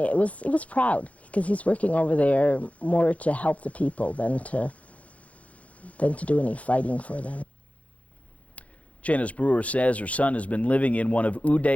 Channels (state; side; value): late; right; 0.066 ms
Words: was proud, because he's working over there more to help the people than to do any fighting for them. Janice Brewer says her son has been living in one of